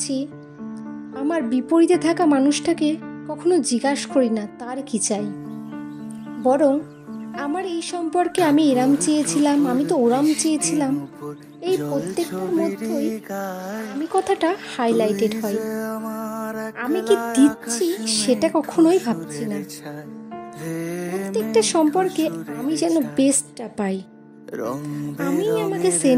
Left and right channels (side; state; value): both; identical; correlation 1.00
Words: আমার বিপরীতে থাকা মানুষটাকে কখনো জিজ্ঞাসা করি না তার কি চাই, বরং আমার এই সম্পর্কে আমি এরাম চেয়েছিলাম, আমি তো ওরাম চেয়েছিলাম, এই প্রত্যেকটার মধ্যেই আমি কথাটা হাইলাইটেড হয়। আমি কি দিচ্ছি সেটা কখনোই ভাবছি না। প্রত্যেকটা সম্পর্কে আমি যেন বেস্টটা পাই, আমি আমাকে